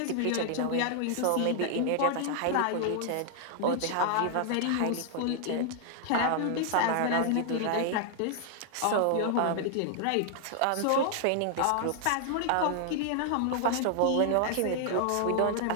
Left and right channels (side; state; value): both; different; correlation 0.00